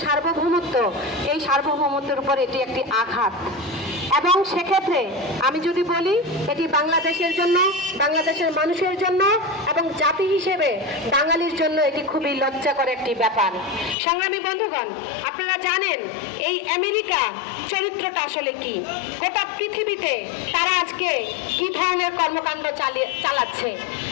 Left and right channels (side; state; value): right; drops out; at 14.0 s